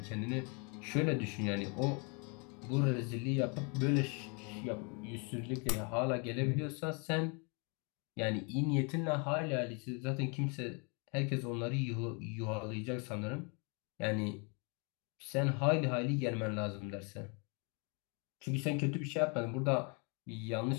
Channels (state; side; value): quieter; right; 34.4 dB